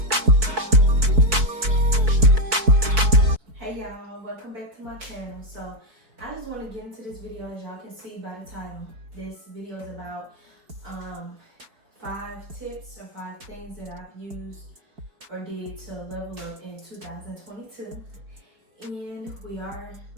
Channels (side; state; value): left; late; 4.6 ms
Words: Hey y'all, welcome back to my channel. So I just want to get into this video. As y'all can see by the title, this video is about 5 tips or 5 things that I've used or did to level up in 2022. And we are